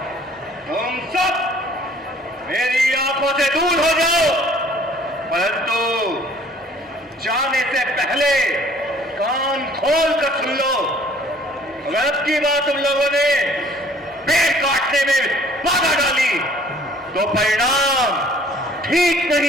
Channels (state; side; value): normal; both; correlation 0.55